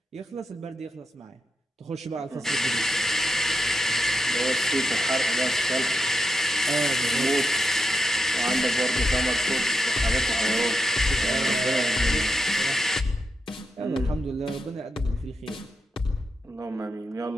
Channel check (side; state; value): both; normal; correlation 0.85